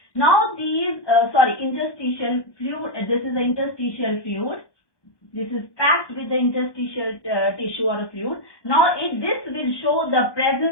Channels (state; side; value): late; right; 1.2 ms